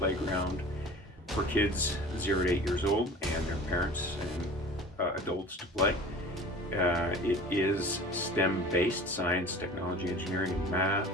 for kids 0 to 8 years old and their parents and adults to play. It is STEM-based, science, technology, engineering, and math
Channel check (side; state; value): both; normal; correlation 0.41